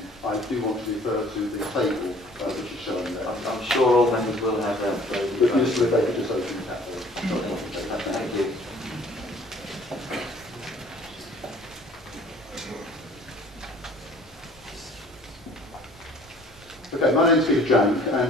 I do want to refer to the table which is shown there. I'm sure all members will have that. But useful if they could just open that. Thank you. Okay, my name is Peter Jank,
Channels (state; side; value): normal; both; correlation 0.53